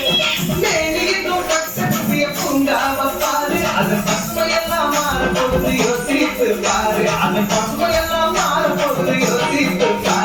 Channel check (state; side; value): identical; both; correlation 1.00